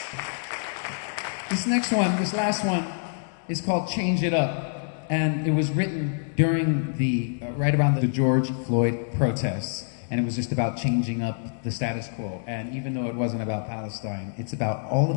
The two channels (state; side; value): silent; right; digital silence